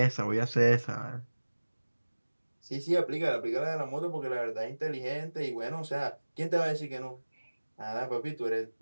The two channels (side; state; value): both; inverted; correlation -1.00